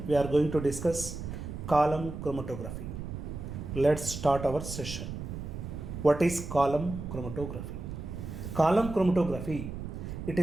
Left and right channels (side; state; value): right; noise; rumble, 7 dB below the sound